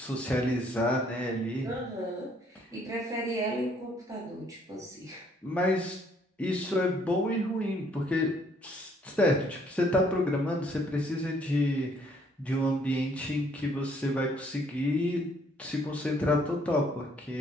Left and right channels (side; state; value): both; normal; correlation 0.65